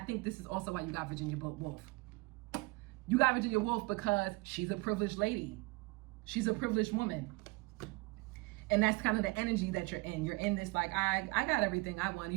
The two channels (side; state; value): left; quieter; 24.5 dB